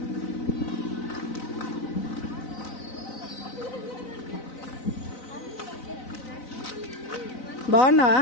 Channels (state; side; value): late; right; 4.0 ms